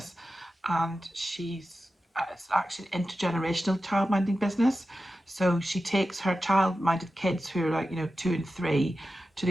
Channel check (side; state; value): both; normal; correlation 0.93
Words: and it's actually an intergenerational childminding business. So she takes her child-minded kids who are like, 2 and 3 to